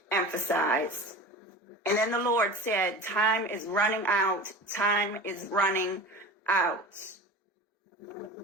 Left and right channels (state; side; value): normal; both; correlation 0.35